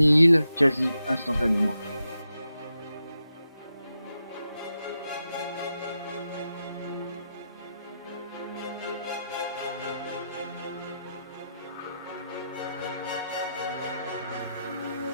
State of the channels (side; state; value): both; inverted; correlation -0.87